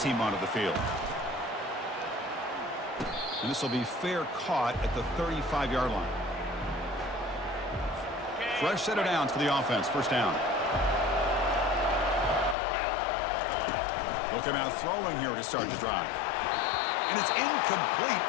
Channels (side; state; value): right; drops out; at 12.6 s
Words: onto the field. And this will be fair caught at the 35-yard line. Fresh set of downs for the offense. First down. They'll come out throwing here to start the drive. And it's incomplete.